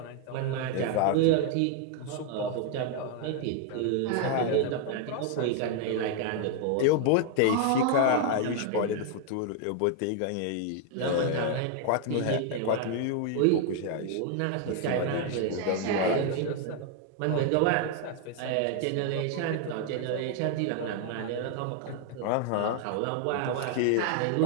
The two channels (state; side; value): different; both; correlation 0.00